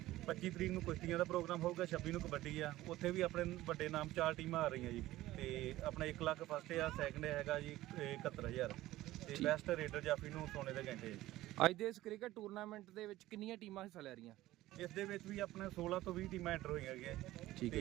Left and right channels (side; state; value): left; quieter; 16.2 dB